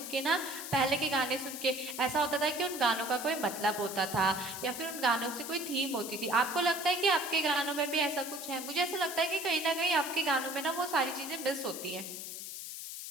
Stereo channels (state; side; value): noise; left; hiss, 8 dB below the sound